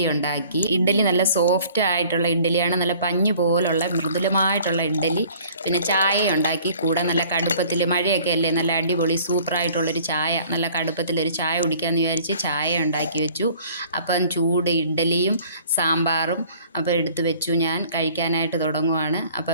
ഉണ്ടാക്കി. ഇഡ്ഡലി നല്ല സോഫ്റ്റ് ആയിട്ടുള്ള ഇഡ്ഡലിയാണ്. നല്ല പഞ്ഞു പോലുള്ള മൃദുലമായിട്ടുള്ള ഇഡ്ഡലി. പിന്നെ ചായ ഉണ്ടാക്കി. കൂടെ നല്ല കടുപ്പത്തിൽ മഴയൊക്കെ അല്ലേ, നല്ല അടിപൊളി സൂപ്പറായിട്ടുള്ളൊരു ചായ, നല്ല കടുപ്പത്തിലൊരു ചായ കുടിക്കാമെന്ന് വിചാരിച്ച് ചായ ഉണ്ടാക്കി വെച്ചു. അപ്പം ചൂട് ഇഡ്ഡലിയും സാമ്പാറും അപ്പോൾ എടുത്ത് വെച്ചു. ഞാൻ കഴിക്കാനായിട്ട് തുടങ്ങുവാണ്.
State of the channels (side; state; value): both; inverted; correlation -0.52